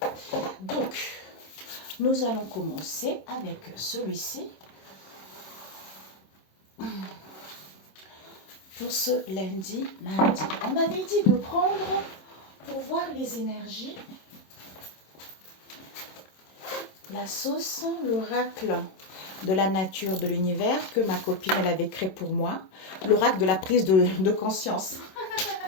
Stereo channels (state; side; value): late; right; 26 ms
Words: Donc, nous allons commencer avec celui-ci. Pour ce lundi, mardi. On m'avait dit de prendre pour voir les énergies la sauce, l'oracle de la nature de l'univers que ma copine elle avait créé pour moi, l'oracle de la prise de conscience